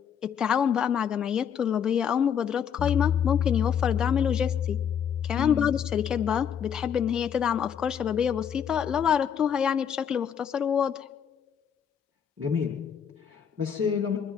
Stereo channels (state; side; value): quieter; right; 8.1 dB